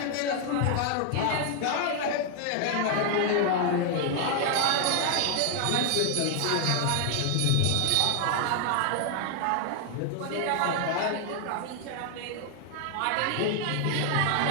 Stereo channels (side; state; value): both; different; correlation 0.00